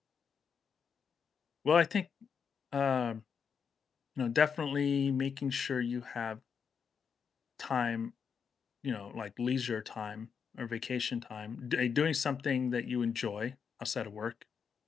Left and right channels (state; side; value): quieter; right; 6.5 dB